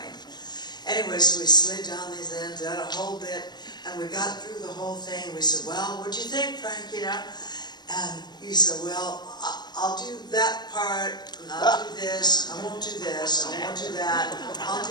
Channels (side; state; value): right; late; 0.21 ms